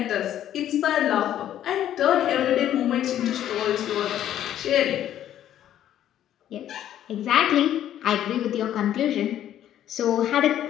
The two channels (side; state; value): right; quieter; 11.4 dB